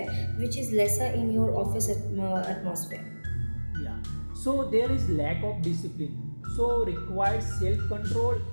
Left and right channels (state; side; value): inverted; both; correlation -1.00